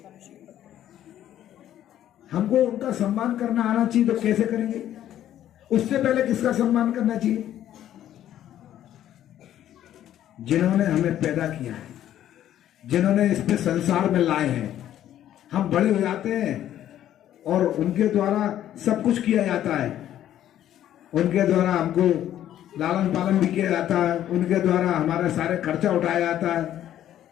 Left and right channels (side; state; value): right; quieter; 11.7 dB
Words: हमको उनका सम्मान करना आना चाहिए, तो कैसे करेंगे? उससे पहले किसका सम्मान करना चाहिए? जिन्होंने हमें पैदा किया है, जिन्होंने इस पे संसार में लाए हैं। हम बड़े हो जाते हैं और उनके द्वारा सब कुछ किया जाता है। उनके द्वारा हमको लालन पालन भी किया जाता है, उनके द्वारा हमारा सारे खर्चा उठाया जाता है।